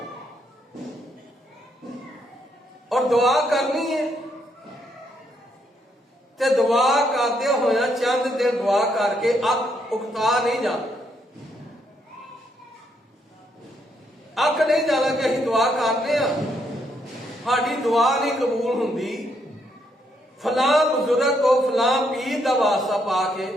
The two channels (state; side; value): normal; both; correlation 0.75